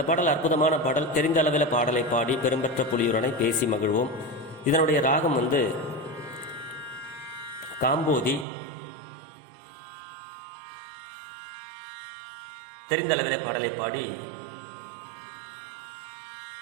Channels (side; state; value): left; drops out; at 8.5 s